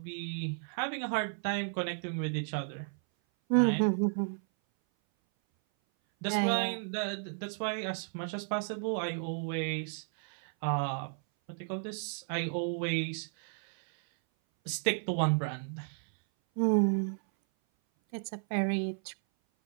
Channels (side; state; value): left; silent; 56 dB below the other